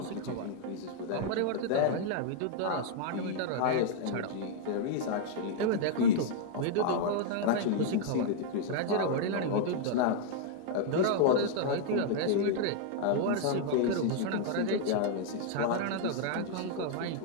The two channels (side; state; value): both; different; correlation -0.01